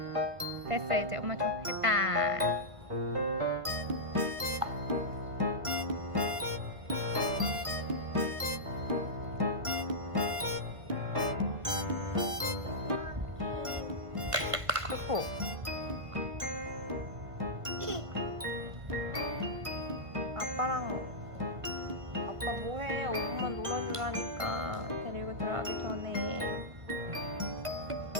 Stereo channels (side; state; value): left; late; 1.5 ms